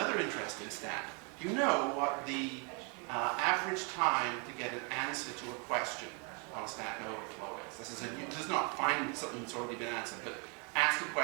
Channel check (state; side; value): quieter; left; 34.8 dB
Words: interesting stat. Do you know what the average time to get an answer to a question on Stack Overflow is? This does not find something that's already been answered, but ask a